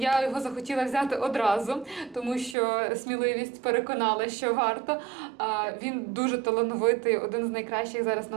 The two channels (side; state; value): left; drops out; at 2.6 s